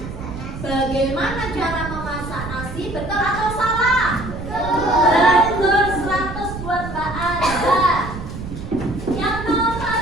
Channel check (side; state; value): right; noise; rumble, 9 dB below the sound